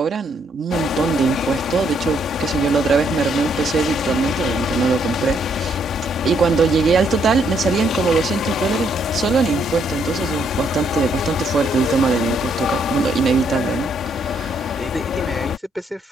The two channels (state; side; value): normal; both; correlation 0.72